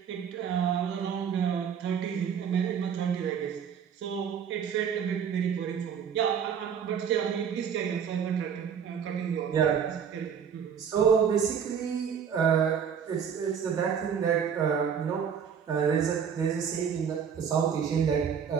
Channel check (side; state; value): left; quieter; 7.5 dB